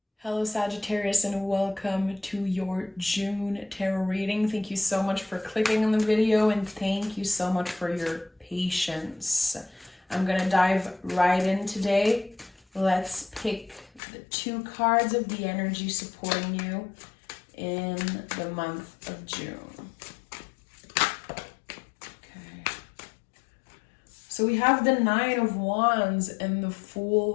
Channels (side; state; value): right; drops out; at 14.0 s